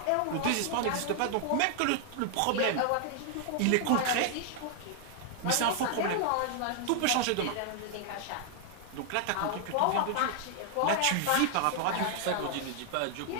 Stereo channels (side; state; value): both; different; correlation 0.00